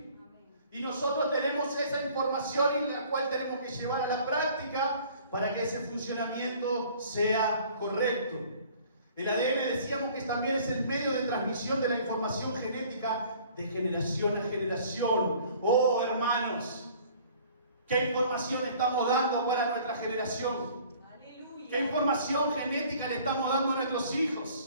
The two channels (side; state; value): both; inverted; correlation -0.53